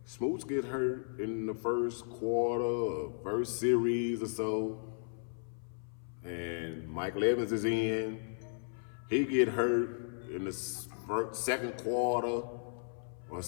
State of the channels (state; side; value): silent; right; 54 dB below the other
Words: Smoots get hurt in the first quarter, or first series or so, and Michael Evans is in. He get hurt in the second quarter or